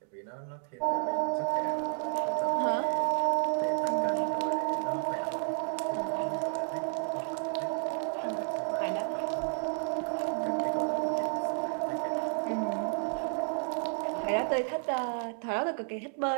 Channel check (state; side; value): silent; left; 57 dB below the other